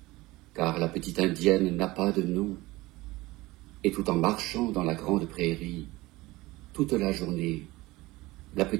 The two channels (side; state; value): left; quieter; 20.0 dB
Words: Car la petite indienne n'a pas de nom. Et tout en marchant dans la grande prairie, toute la journée, la